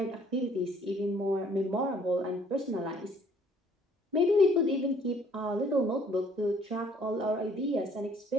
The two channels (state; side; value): normal; both; correlation 0.60